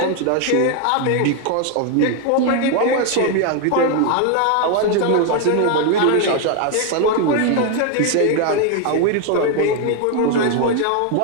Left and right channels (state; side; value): different; both; correlation 0.01